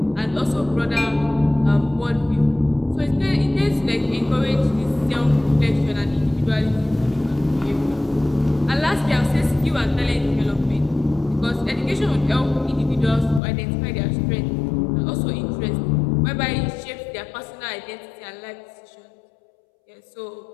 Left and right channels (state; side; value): drops out; right; at 13.4 s